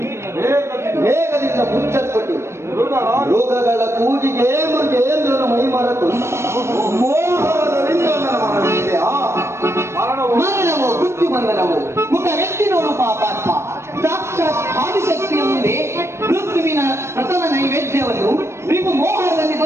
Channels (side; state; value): left; late; 0.13 ms